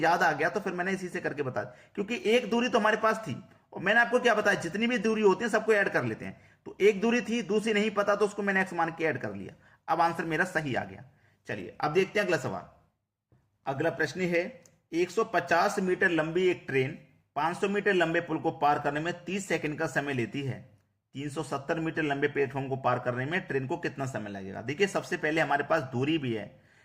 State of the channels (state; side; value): identical; both; correlation 1.00